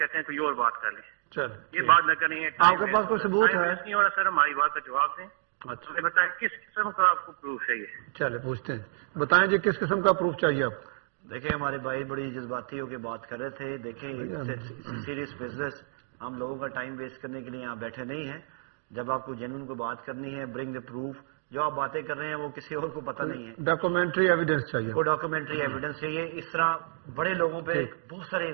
ہیں کوئی اور بات کر لیں. چل یہ بات نہ کریں. آپ کے پاس کوئی ثبوت ہے؟ نہیں ہو رہا سر, ہماری بات کا جواب دیں. اچھا بتائیں کس قسم کا آپ کو پروف چاہیے. چلے پوچھتے ہیں, بتائیں جی کس قسم کا پروف چاہیے آپ کو. دیکھیں ہمارے بھائی بڑی جذباتی ہو کے بات کر رہے تھے. دیکھیں سیریس بزنس, ہم لوگوں کا ٹائم ویسٹ کرنے کے لیے یہاں بیٹھے نہیں ہیں. جب آپ کو جنون کو بات کرنی ہے, برنگ دا پروف. جو آپ باتیں کر رہے ہیں وہ کسی اور کو پتہ نہیں ہے. ڈاکومنٹری ایویڈنس چاہیے, وہ ڈاکومنٹری ایویڈنس چاہیے. اس طرح بڑے لوگوں پہ بہت سارے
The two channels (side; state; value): left; silent; digital silence